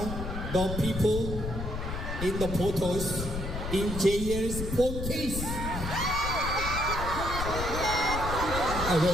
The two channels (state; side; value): noise; left; rumble, 5 dB below the sound